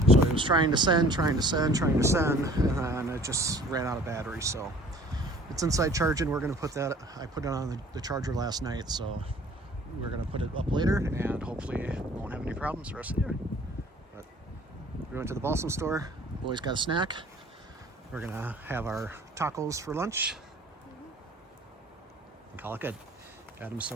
So it was trying to send, and then it just ran out of battery. So it's inside charging. We're going to put that, I put it on the charger last night, so we're going to put it up later, and hopefully won't have any problems the rest of the year. But we went to the Balsam store. Boys got a snack. We're going to have our tacos for lunch and call it good. Adam's so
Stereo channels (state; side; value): normal; both; correlation 0.51